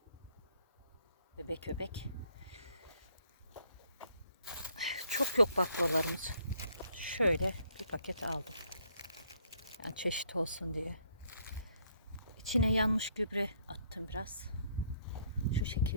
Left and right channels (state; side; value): inverted; both; correlation -0.67